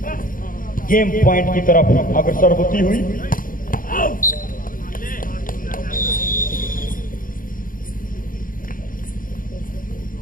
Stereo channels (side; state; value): right; late; 0.40 ms